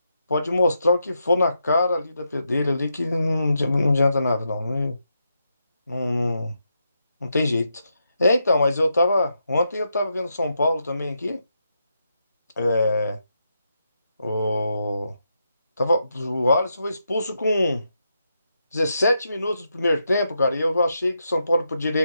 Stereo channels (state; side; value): inverted; both; correlation -0.83